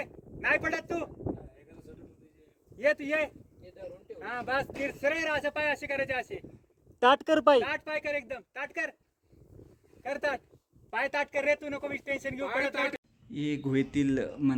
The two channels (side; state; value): both; identical; correlation 1.00